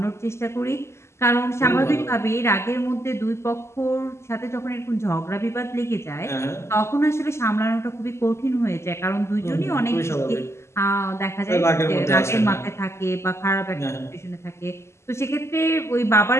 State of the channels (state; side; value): late; right; 0.13 ms